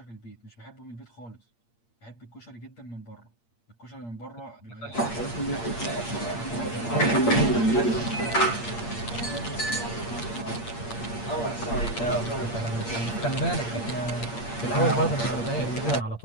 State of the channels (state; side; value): late; right; 8.6 ms